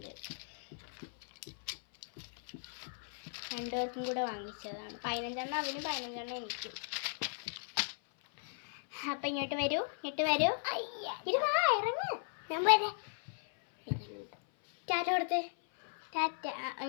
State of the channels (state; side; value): silent; right; 53 dB below the other